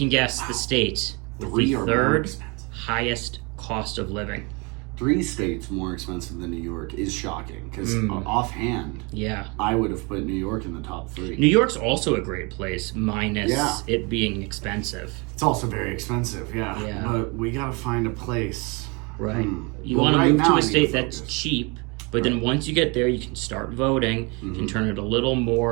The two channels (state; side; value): quieter; left; 29.5 dB